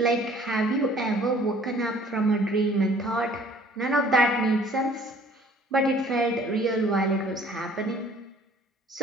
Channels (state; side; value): normal; both; correlation 0.55